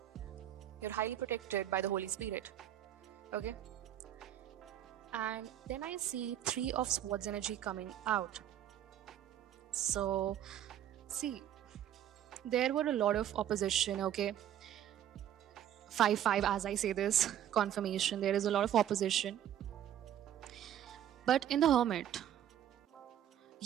You're highly protected by the Holy Spirit. Okay. And then I see Three of Swords energy coming out. So, see, there were a lot of opposition, okay? 5-5, as I say this, confirmation. There is a lot of opposition. But in the Hermit,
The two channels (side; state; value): left; quieter; 10.9 dB